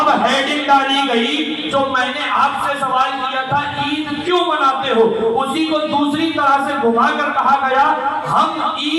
ہیڈنگ ڈالی گئی جو میں نے آپ سے سوال کیا تھا عید کیوں مناتے ہو, اسی کو دوسری طرح سے گھما کر کہا گیا ہم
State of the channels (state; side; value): identical; both; correlation 1.00